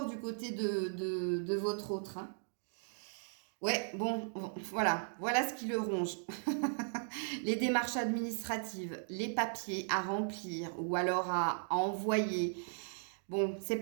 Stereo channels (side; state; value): left; silent; digital silence